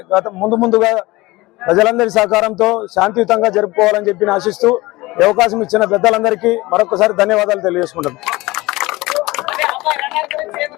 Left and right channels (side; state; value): right; quieter; 20.8 dB